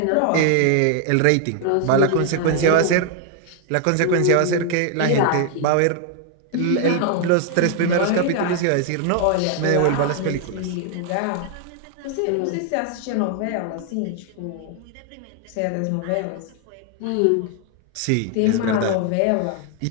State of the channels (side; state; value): both; different; correlation 0.00